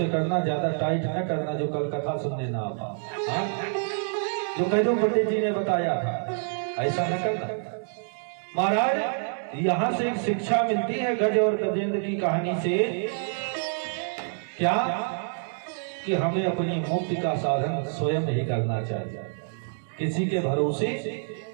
करना, ज्यादा टाइट न करना, जो कल कथा सुनने ना आ। जो कैदो पंडित जी ने बताया था ऐसा न करना। महाराज यहाँ से एक शिक्षा मिलती है गज और गजेंद्र की कहानी से, क्या कि हमें अपनी मुक्ति का साधन स्वयं ही करना चाहिए, किसी के भरोसे।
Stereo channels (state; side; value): silent; left; digital silence